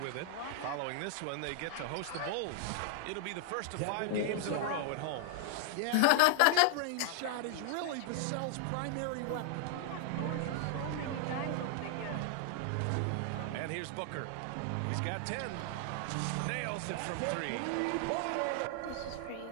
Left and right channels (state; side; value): different; both; correlation 0.00